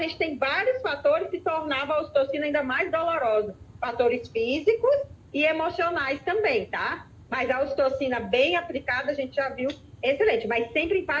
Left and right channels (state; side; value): identical; both; correlation 1.00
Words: tem vários fatores que tornavam a ocitocina ainda mais dolorosa. Fatores físicos e emocionais também, tá? Mas a ocitocina bem aplicada, a gente já viu, excelente. Mas sempre em